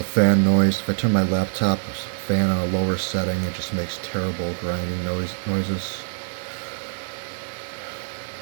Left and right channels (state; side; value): silent; left; digital silence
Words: fan noise. If I turn my laptop fan on a lower setting, it just makes terrible grinding noises.